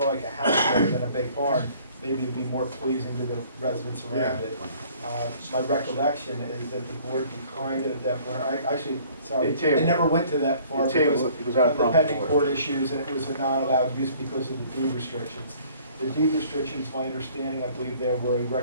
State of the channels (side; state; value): both; inverted; correlation -0.55